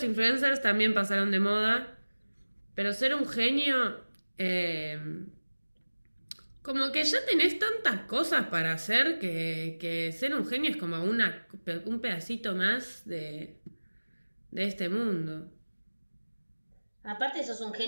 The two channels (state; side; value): inverted; both; correlation -1.00